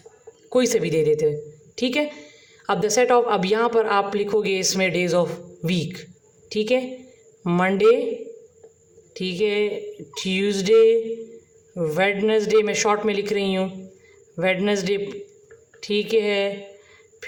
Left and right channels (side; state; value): both; identical; correlation 1.00